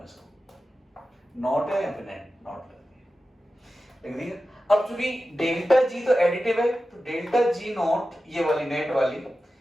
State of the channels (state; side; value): normal; both; correlation 0.93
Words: इसको, नॉट है या फिर नॉट लिख दिया। अब चूंकि डेल्टा जी तो एडिटिव है, तो डेल्टा जी नॉट, ये वाली नेट वाली,